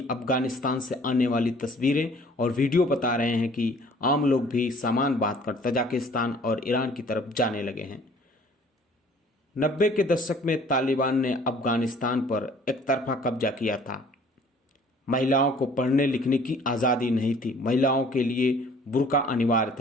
अफगानिस्तान से आने वाली तस्वीरें और वीडियो बता रहे हैं कि आम लोग भी सामान बांधकर तजाकिस्तान और ईरान की तरफ जाने लगे हैं। 90 के दशक में तालिबान ने अफगानिस्तान पर एकतरफा कब्जा किया था। महिलाओं को पढ़ने लिखने की आज़ादी नहीं थी। महिलाओं के लिए बुर्का अनिवार्य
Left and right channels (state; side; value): normal; both; correlation 0.54